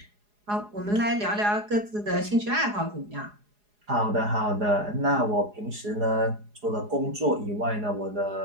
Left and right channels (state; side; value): late; left; 4.8 ms